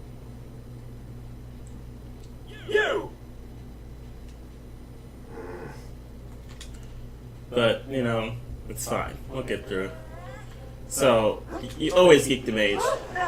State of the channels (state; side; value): identical; both; correlation 1.00